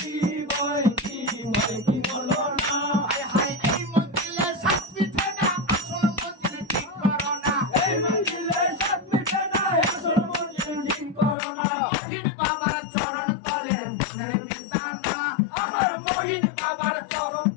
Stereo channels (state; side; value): drops out; right; at 11.4 s